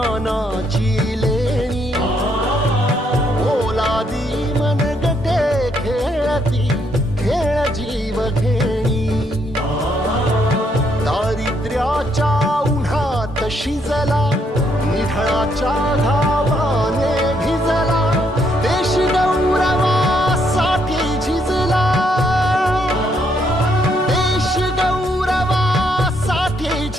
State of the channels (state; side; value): normal; both; correlation 0.73